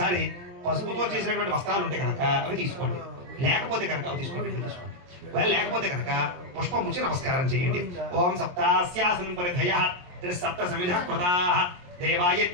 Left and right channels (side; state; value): left; late; 22 ms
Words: పసుపుతో చేసినటువంటి వస్త్రాలు ఉంటే కనుక అవి తీసుకోండి లేకపోతే కనుక అవి తీసుకోండి లేకపోతే కనుక పుష్పం ముచ్చి నమస్కారం చేయండి ఓం సప్తాస్యాసనం పరిధయః త్రిసప్త సమిధః కృతాః देवाय